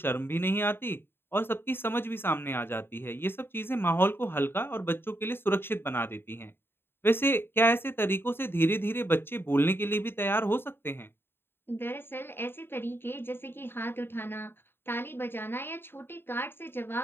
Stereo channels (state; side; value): late; right; 0.11 ms